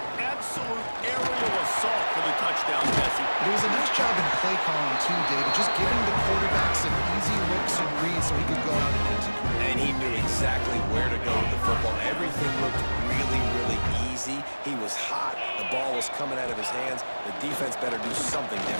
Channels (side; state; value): both; inverted; correlation -1.00